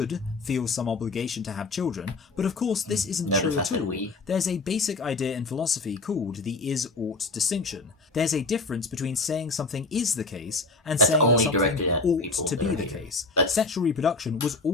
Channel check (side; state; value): right; quieter; 3.6 dB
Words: feel some obligation to have children, but of course this isn't true at all. There's a basic idea in philosophy called the is-ought distinction. There's a difference between saying something is the case and saying that something ought to be the case. Sexual reproduction was